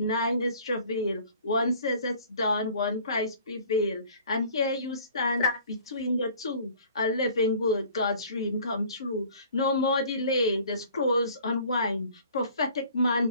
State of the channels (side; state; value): both; inverted; correlation -0.51